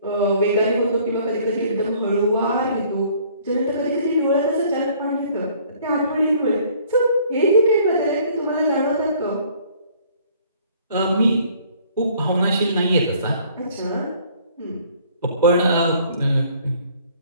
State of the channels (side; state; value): both; inverted; correlation -0.58